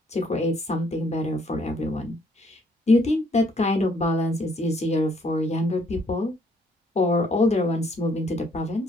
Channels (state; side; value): normal; both; correlation 0.66